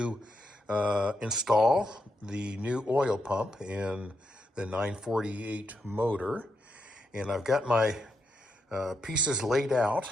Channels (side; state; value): both; normal; correlation 0.82